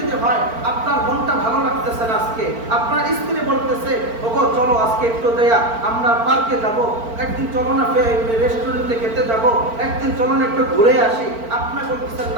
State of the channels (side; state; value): left; late; 4.4 ms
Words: যদি হয়, আপনার মনটা ভালো লাগতেছে না, আজকে আপনার স্ত্রী বলতেছে ওগো চলো আজকে একটু দেয়া আমরা পার্কে যাব, একদিন চলো না রেস্টুরেন্টে খেতে যাব, একদিন চলো না একটু ঘুরে আসি, আপনি বলতেছেন